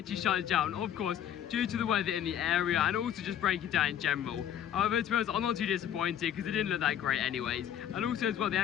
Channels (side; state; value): right; quieter; 9.9 dB